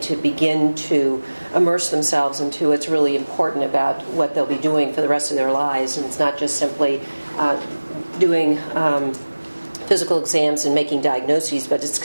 to begin to immerse themselves into what's really important about what they'll be doing for the rest of their lives. And it's not just simply doing physical exams and making diagnoses, but it's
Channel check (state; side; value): inverted; both; correlation -1.00